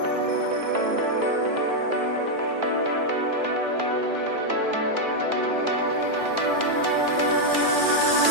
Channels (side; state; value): left; late; 2.3 ms